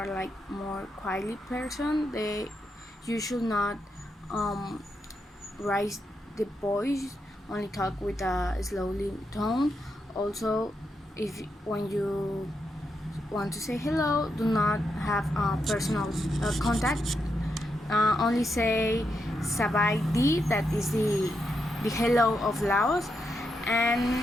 like more quietly person. You should not um, raise the voice, only talk with a slowly tone. Also, if when you want to say hello, do not have personal contact. Only say Sabai Di, that is the hello of Laos,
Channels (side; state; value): both; normal; correlation 0.83